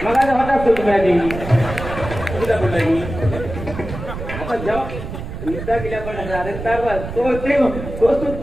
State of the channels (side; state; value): right; noise; rumble, 8 dB below the sound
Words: मग आता होताच तो तुम्ही आधी तुला बोलला मी आता जेव्हा युद्धा केल्या पण तो